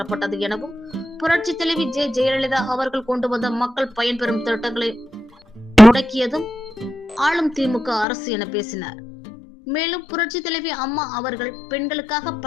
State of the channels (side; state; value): right; drops out; at 8.1 s